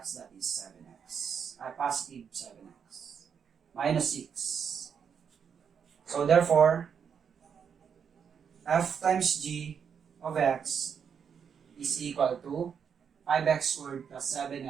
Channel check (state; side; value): quieter; left; 7.2 dB